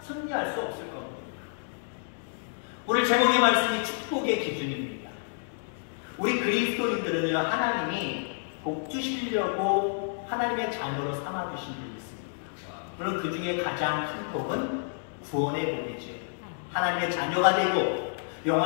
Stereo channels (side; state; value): right; silent; digital silence